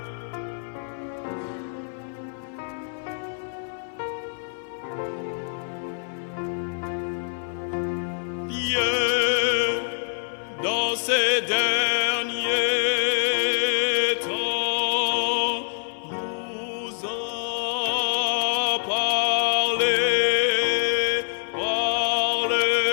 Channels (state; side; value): silent; right; 55 dB below the other